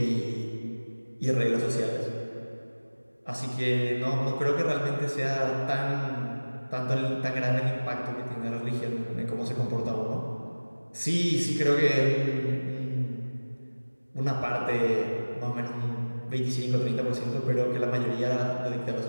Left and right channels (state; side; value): inverted; both; correlation -1.00